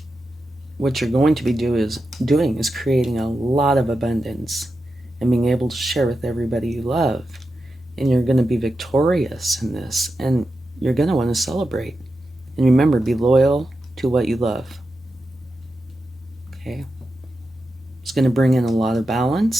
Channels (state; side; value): normal; both; correlation 0.89